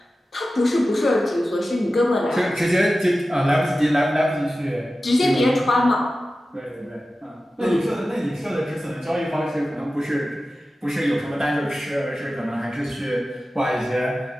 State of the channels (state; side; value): normal; both; correlation 0.94